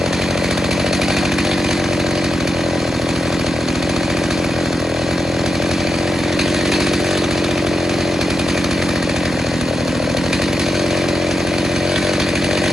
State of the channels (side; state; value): both; normal; correlation 0.87